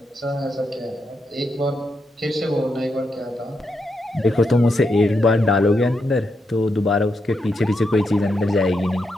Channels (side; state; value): both; normal; correlation 0.83